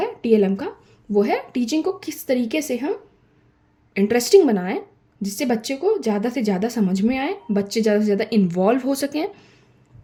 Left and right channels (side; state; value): both; identical; correlation 1.00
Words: TLM का वो है टीचिंग को किस तरीके से हम इंटरेस्टिंग बनाएं जिससे बच्चे को ज़्यादा से ज़्यादा समझ में आए, बच्चे ज़्यादा से ज़्यादा इन्वॉल्व हो सकें,